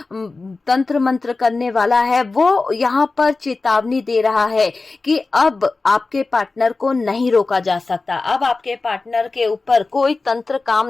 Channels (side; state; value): right; quieter; 3.7 dB